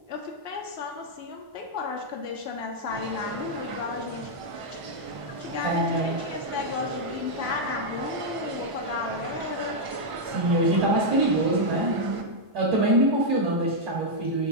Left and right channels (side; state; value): left; late; 1.5 ms